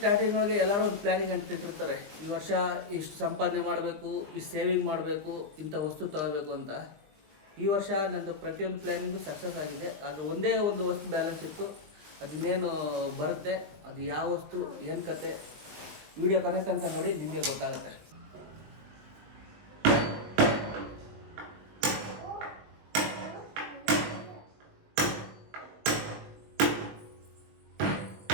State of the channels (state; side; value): late; left; 20 ms